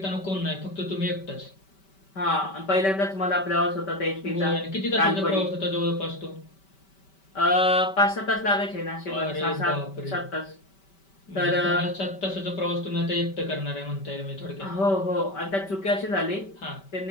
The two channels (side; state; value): right; late; 5.2 ms